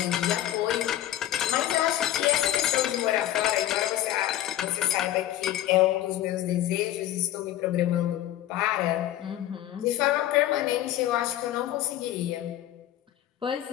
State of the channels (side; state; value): right; quieter; 13.2 dB